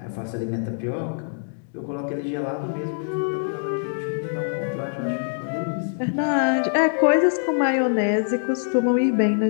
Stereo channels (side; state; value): right; silent; digital silence